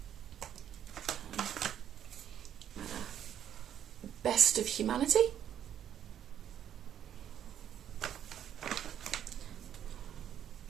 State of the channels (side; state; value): left; quieter; 9.9 dB